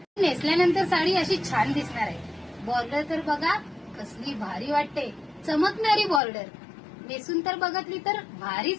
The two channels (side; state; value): right; drops out; at 6.2 s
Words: नेसल्यानंतर साडी अशी छान दिसणार आहे। बॉर्डर तर बघा कसली भारी वाटते, चमकणारी बॉर्डर, नेसून तर बघितली तर